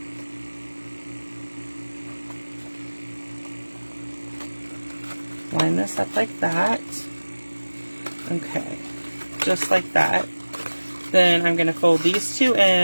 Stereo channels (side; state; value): both; inverted; correlation -1.00